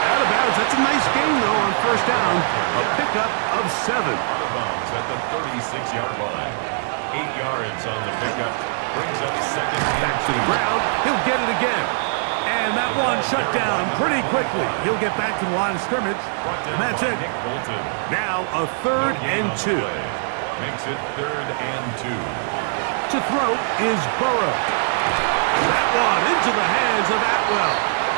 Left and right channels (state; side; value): silent; left; digital silence